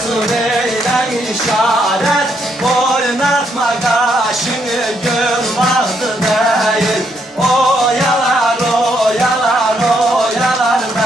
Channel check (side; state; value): both; normal; correlation 0.75